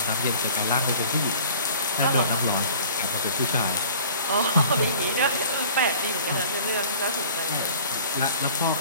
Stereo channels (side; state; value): both; inverted; correlation -0.48